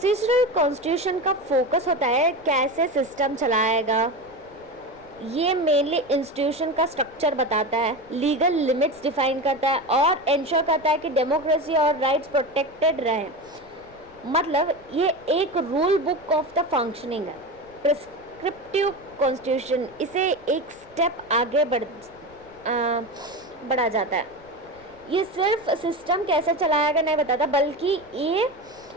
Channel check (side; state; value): left; noise; rumble, 26 dB below the sound